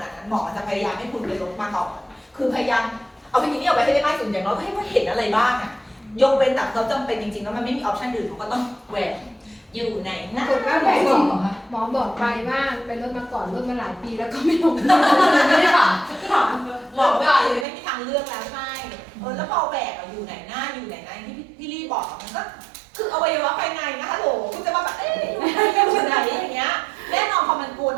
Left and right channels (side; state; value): left; drops out; at 17.7 s